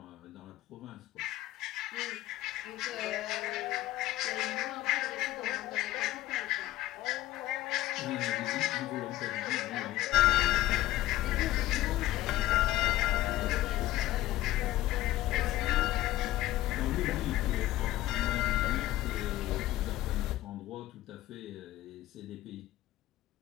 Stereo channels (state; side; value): quieter; right; 15.6 dB